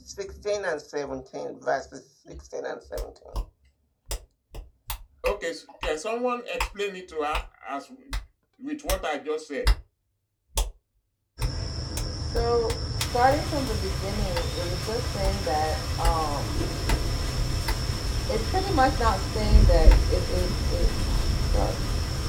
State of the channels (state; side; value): identical; both; correlation 1.00